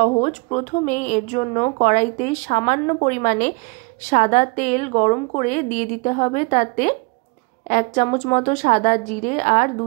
প্রথমেই এর জন্য কড়াইতে সামান্য পরিমাণে সাদা তেল গরম করে দিয়ে দিতে হবে। তাতে 1 চামচ মতো সাদা জিরে আর 2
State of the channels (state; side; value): quieter; left; 29.5 dB